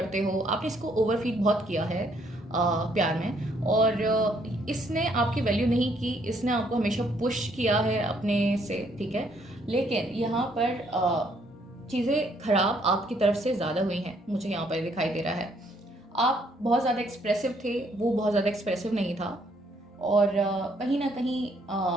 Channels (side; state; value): both; normal; correlation 0.68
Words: हो, आपने इसको ओवरफीड बहुत किया है प्यार में। और इसने आपकी वैल्यू नहीं की, इसने आपको हमेशा पुश किया है अपने से, ठीक है। लेकिन यहाँ पर चीज़ें खराब आपकी तरफ से ज़्यादा हुई हैं, मुझे यहाँ पर दिखाई दे रहा है। आप बहुत ज़्यादा एक्सप्रेसिव थे, वो बहुत ज़्यादा एक्सप्रेसिव नहीं था। और कहीं ना कहीं